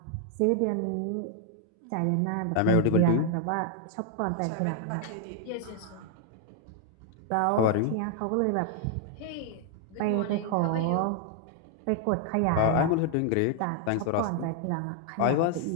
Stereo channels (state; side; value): different; both; correlation 0.00